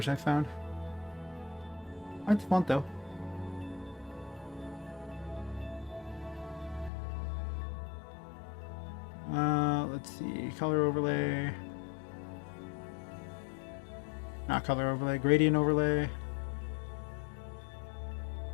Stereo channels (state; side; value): drops out; right; at 6.9 s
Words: I found. I like the font though. Let's see, color overlay. Not color overlay, gradient overlay.